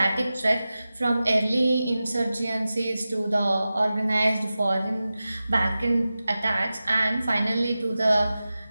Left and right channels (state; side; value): inverted; both; correlation -0.95